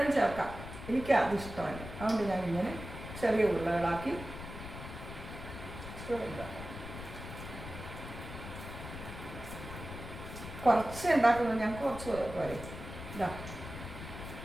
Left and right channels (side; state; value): left; noise; rumble, 10 dB below the sound